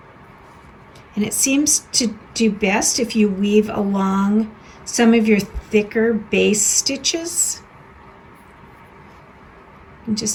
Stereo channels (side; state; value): both; identical; correlation 1.00